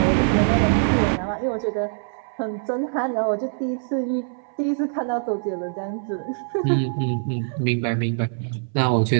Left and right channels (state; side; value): silent; left; 63 dB below the other